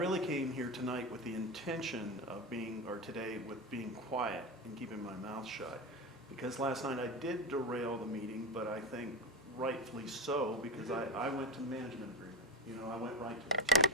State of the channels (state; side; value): normal; both; correlation 0.19